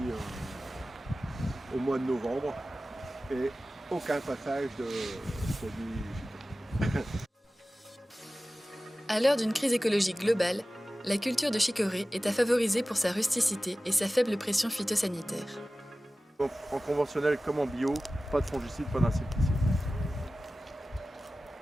au mois de novembre. Et aucun passage de produits. À l'heure d'une crise écologique globale, la culture de chicorée est à favoriser pour sa rusticité et sa faible pression phytosanitaire. En conventionnel comme en bio, pas de fongicides, pas d'insecticides.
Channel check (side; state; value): both; normal; correlation 0.96